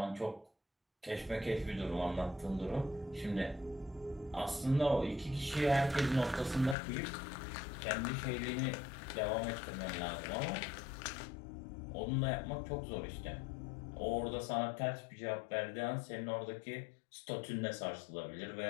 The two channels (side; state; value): right; drops out; at 6.8 s